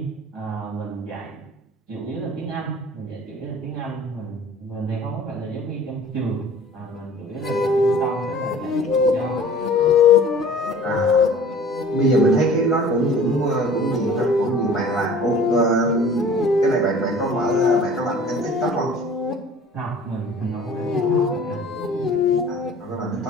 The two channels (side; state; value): both; normal; correlation 0.47